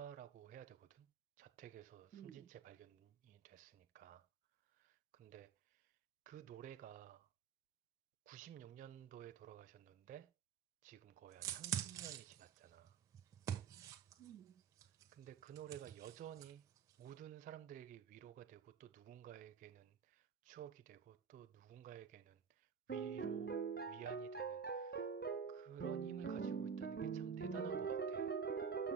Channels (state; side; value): quieter; left; 6.5 dB